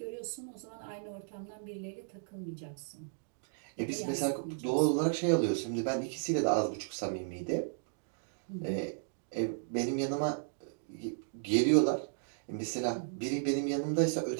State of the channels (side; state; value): left; silent; digital silence